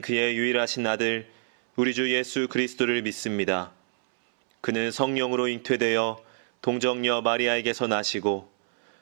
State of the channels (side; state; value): left; silent; 60 dB below the other